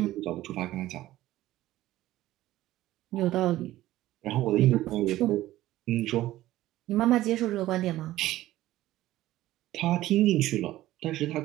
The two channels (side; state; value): left; quieter; 15.3 dB